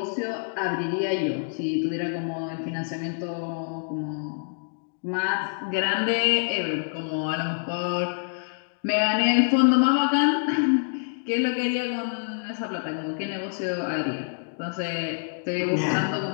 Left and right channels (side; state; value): right; silent; digital silence